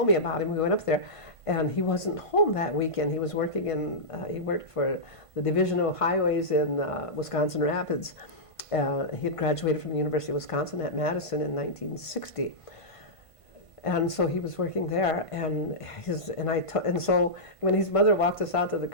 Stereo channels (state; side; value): late; right; 1.5 ms